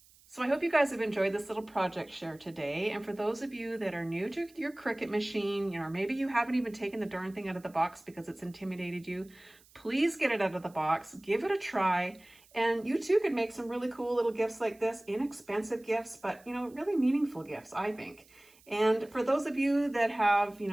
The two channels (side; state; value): right; noise; hiss, 28 dB below the sound